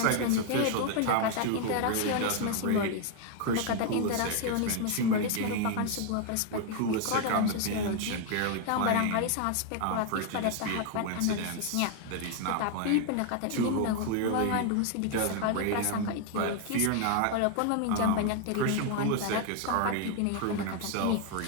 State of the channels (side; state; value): both; different; correlation 0.00